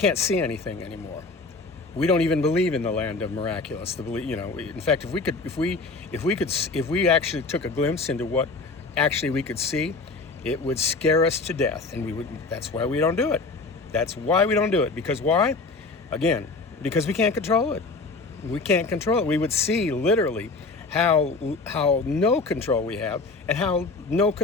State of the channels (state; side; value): quieter; right; 3.8 dB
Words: see anything anymore. We don't even believe in the land of miraculous. In fact, if we actually took a glimpse into what actually we could see, it would scare us to death, and that's why we don't do it. That's why we don't do it. Because why? Again, because we can't control it. We can't control it. We would see literally how no control we have and how no